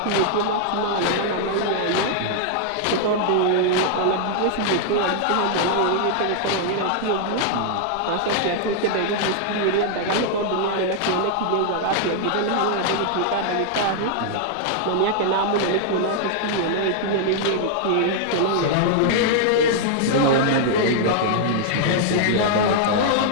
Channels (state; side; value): different; both; correlation -0.01